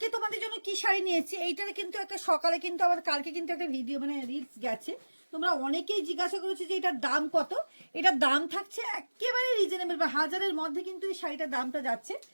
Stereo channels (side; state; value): both; inverted; correlation -1.00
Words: তোমাদের জন্য কি শাড়ি নিয়েছি। এইটার কিন্তু একটা সকালে কিন্তু আবার কালকে কিন্তু একটা ভিডিও মানে রিলস গেছে, তোমরা অনেকেই জিজ্ঞাসা করেছো যে এটার দাম কত। এটার দাম থাকছে একেবারে রিজনেবল, বা হাজারের মধ্যে কিন্তু এই শাড়িটার দামটা যাচ্ছে,